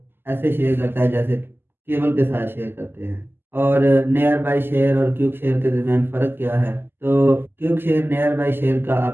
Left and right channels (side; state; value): left; late; 0.10 ms